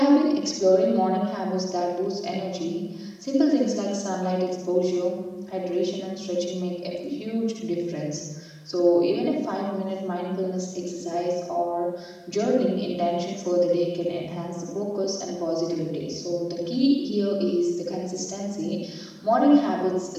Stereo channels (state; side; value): identical; both; correlation 1.00